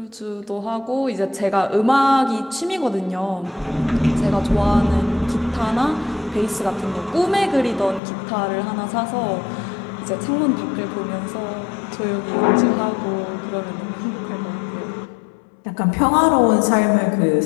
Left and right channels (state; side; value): drops out; right; at 8.0 s